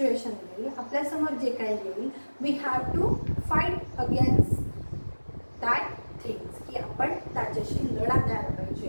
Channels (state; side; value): inverted; both; correlation -1.00